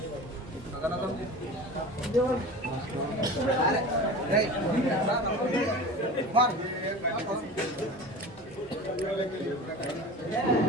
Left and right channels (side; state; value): both; normal; correlation 0.34